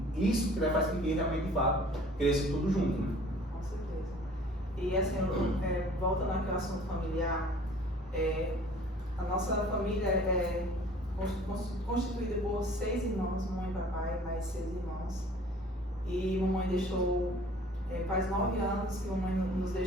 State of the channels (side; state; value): both; normal; correlation 0.50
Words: E isso que faz com que realmente, de fato, cresça tudo junto. Né? Com certeza. E assim, voltando àquele assunto familiar, a nossa família é constituída por 6 irmãos, mamãe e papai, mais 6 irmãos. E mamãe deixou... faz 9 anos que a mamãe nos